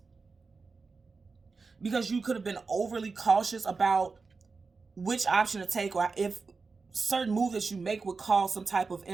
because you could have been overly cautious about which option to take, or if certain move that you make would cause some type of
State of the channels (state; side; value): quieter; left; 4.4 dB